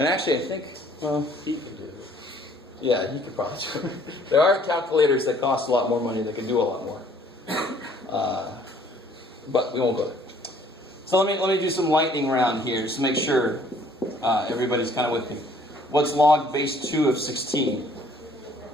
actually, I think, well, He can do it. yeah, you could probably do it. There are calculators that cost a lot more money that can do a lot more. But we won't go there. So let me do some lightning round here just to make sure everybody's kind of with me. What's log base 2 of 16?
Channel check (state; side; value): normal; both; correlation 0.59